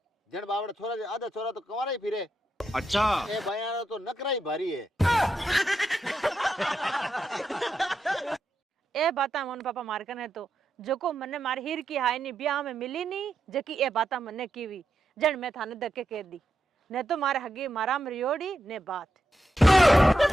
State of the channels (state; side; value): normal; both; correlation 0.85